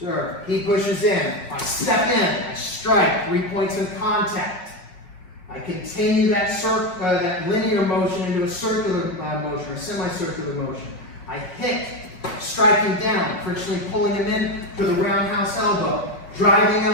he pushes in, I step in, I strike, 3 points in contact. I continue that linear motion into a circular motion or semicircular motion. I hit, striking down, frictionally pulling him in to the roundhouse elbow, driving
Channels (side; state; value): right; late; 5.7 ms